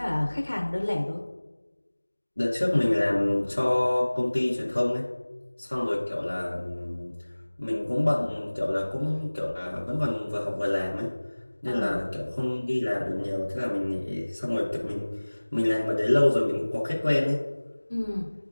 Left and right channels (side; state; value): both; inverted; correlation -1.00